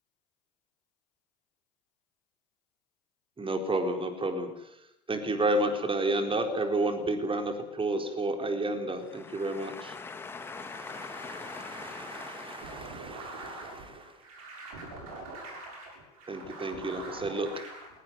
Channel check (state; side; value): normal; both; correlation 0.49